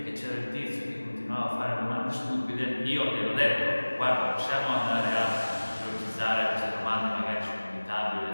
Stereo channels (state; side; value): inverted; both; correlation -1.00